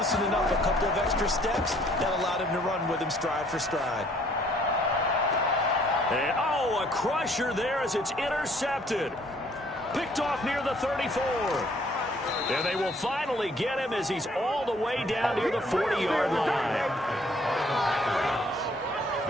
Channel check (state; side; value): normal; both; correlation 0.61